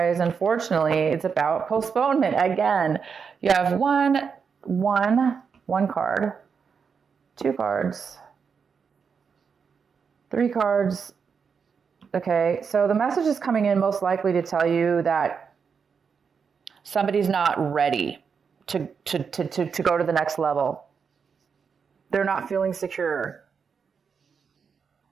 unfortunately, it's about postponement. Again, you have one card, 2 cards, 3 cards. Okay, so the message is coming in most likely to tell you that somebody's not ready to go to the next level. They're not feeling secure.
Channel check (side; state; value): left; quieter; 6.1 dB